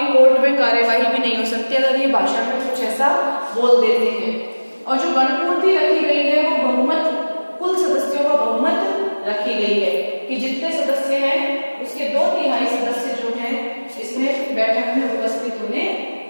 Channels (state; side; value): inverted; both; correlation -1.00